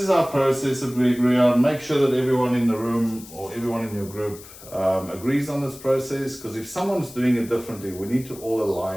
our process that we agree on. Make sure that everyone in the room or everyone in your group agrees on this process, because if someone's doing it differently, we need to all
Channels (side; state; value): left; noise; hiss, 18 dB below the sound